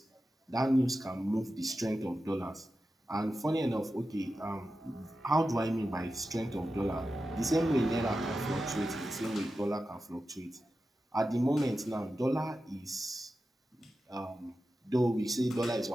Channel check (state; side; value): normal; both; correlation 0.92